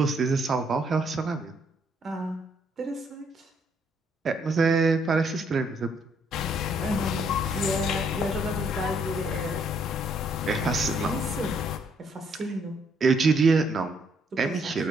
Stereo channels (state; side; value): normal; both; correlation 0.70